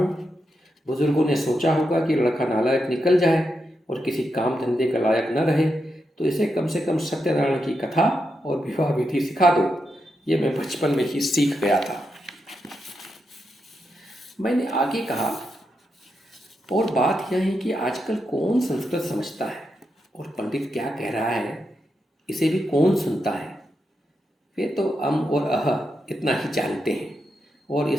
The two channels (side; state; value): both; normal; correlation 0.85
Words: बुजुर्गों ने सोचा होगा कि लड़का नालायक निकल जाए और किसी काम धंधे का लायक न रहे तो इसे कम से कम सत्यनारायण की कथा और विवाह विधि सिखा दो। ये मैं बचपन में ही सीख गया था। मैंने आगे कहा, और बात यह है कि आजकल कौन संस्कृत समझता है और पंडित क्या कह रहा है इसे भी कौन सुनता है? वे तो अम और अह इतना ही जानते हैं, और